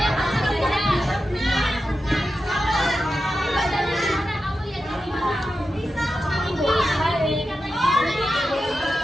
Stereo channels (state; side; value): normal; both; correlation 0.90